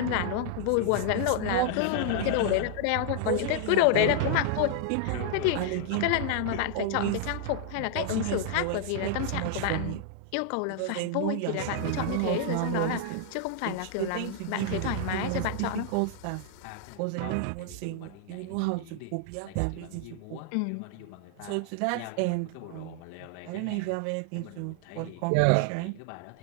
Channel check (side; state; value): both; different; correlation 0.00